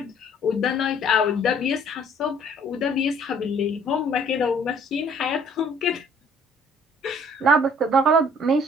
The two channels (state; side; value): normal; both; correlation 0.58